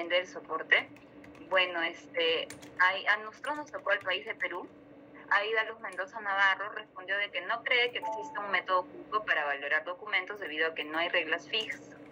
del soporte. Bueno, a nosotros nos tocó el país de Perú. Aida Luz Mendoza Navarro respondió de que no cree que exista un método único para valorar documentos debido a que no hay reglas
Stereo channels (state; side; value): identical; both; correlation 1.00